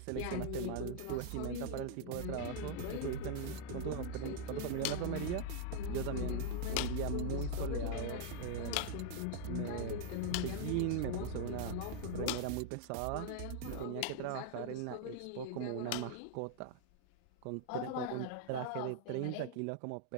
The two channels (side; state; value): both; different; correlation 0.00